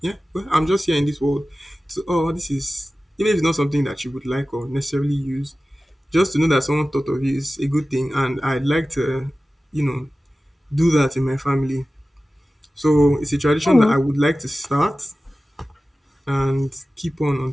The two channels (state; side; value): normal; both; correlation 0.96